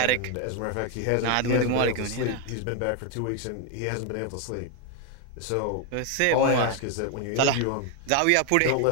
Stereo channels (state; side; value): different; both; correlation 0.01